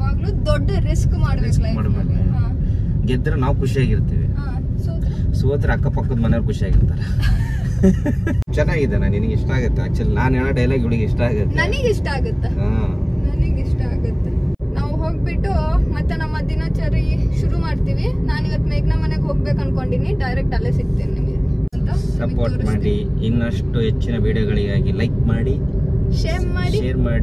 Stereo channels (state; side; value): identical; both; correlation 1.00